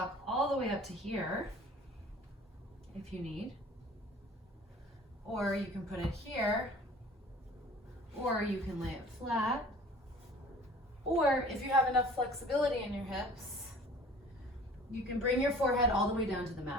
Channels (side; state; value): both; normal; correlation 0.47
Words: all the way up to here if you need, or you can put it here, or you can lay it flat, or if you have enough flexibility in your hips, you can bring your forehead all the way down to the